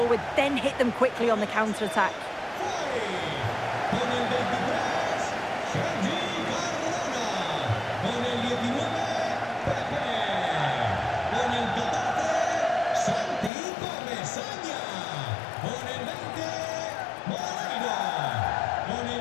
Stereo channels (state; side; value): drops out; right; at 13.5 s